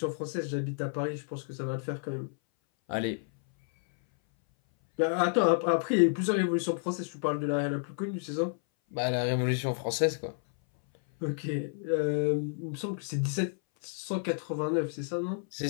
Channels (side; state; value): right; silent; 58 dB below the other